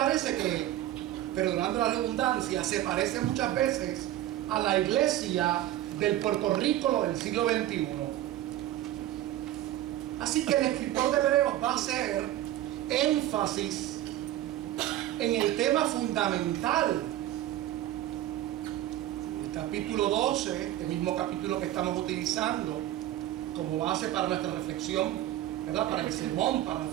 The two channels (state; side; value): quieter; left; 13.6 dB